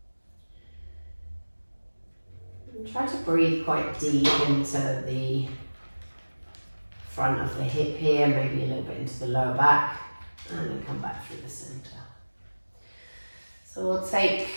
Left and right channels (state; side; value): inverted; both; correlation -1.00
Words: And try to breathe quite deep into the front of the hip here, maybe a little bit into the lower back, and then come back through the centre. So we'll take